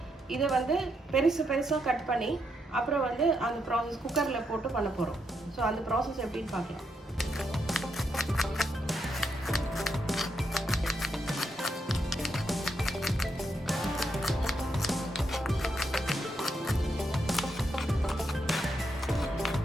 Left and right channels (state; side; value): normal; both; correlation 0.80